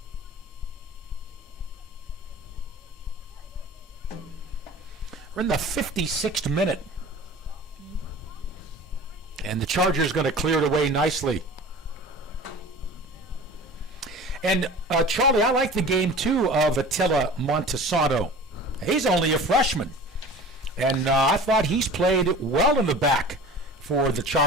We're in the 56th minute. And the Chargers going to clear it away nicely. And, Charlie, I like the game, too, of Attila Montesano. He's only a freshman. And I thought he's played well in the back for the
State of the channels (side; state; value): both; normal; correlation 0.40